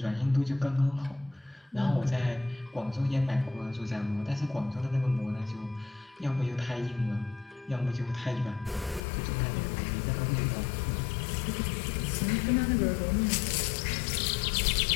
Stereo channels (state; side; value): drops out; right; at 9.0 s